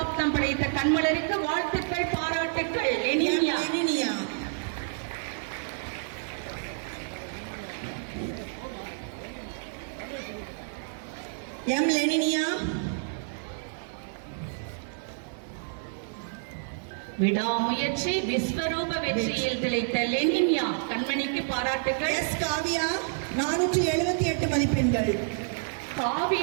படைத்த கண்மலருக்கு வாழ்த்துக்கள், பாராட்டுக்கள். லெனின்யா லெனினியா. எம் லெனினியா. விடாமுயற்சி விஸ்வரூப வெற்றியில் திளைத்த லெனின்யா கண்மணிக்கு பாராட்டுக்கள். எஸ் காவியா 478 மதிப்பெண்கள்.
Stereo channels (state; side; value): silent; left; digital silence